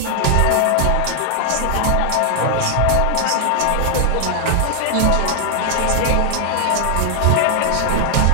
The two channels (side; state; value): both; different; correlation 0.00